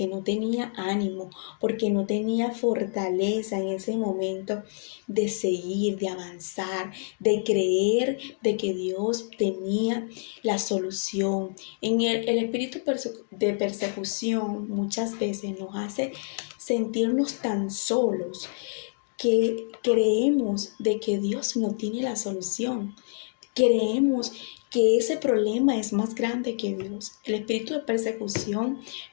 no tenía ánimo, porque no tenía fortaleza en ese momento de seguir, de avanzar, de creer de que Dios tenía la solución. En el espíritu de persecución muchas veces nos hace sentirnos tan solos que creemos de que Dios no tiene la solución. Creemos que ese problema es más grande que Dios. El espíritu de persecución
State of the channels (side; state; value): right; silent; 60 dB below the other